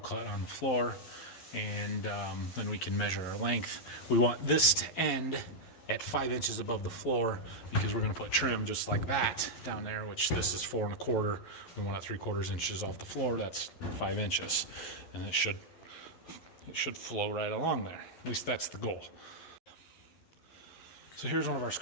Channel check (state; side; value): late; right; 11 ms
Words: on the floor, and then we can measure our length. We want this to end at 5 inches above the floor because we're going to put trim just like that down there, which this is 4 1/4. We want it 3/4 inches off the floor. That's 5 inches, and it should flow right along there. At least that's the goal. So here's one of our